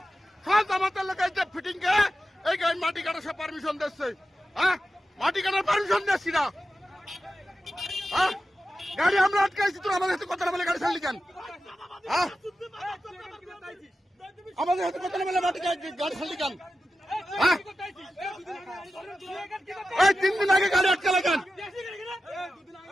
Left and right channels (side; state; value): both; normal; correlation 0.92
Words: সব জামাতের লোক ফিটিং কে এই মাটি কাটার সব পারমিশন দিচ্ছে, হ্যাঁ মাটি কাটার পারমিশন দিচ্ছি না, হ্যাঁ গাড়ি আমরা আটকাইছি, তোর আমাদের সাথে কথা না বলে গাড়ি ছাড়লি কেন, হ্যাঁ আমাদের সাথে কথা না বলে মাটি গাড়ি ছাড়লি কেন, হ্যাঁ এই 3 দিন আগে গাড়ি আটকালে কেন,